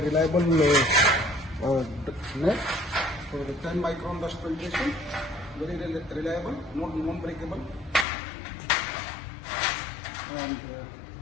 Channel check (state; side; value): drops out; right; at 8.1 s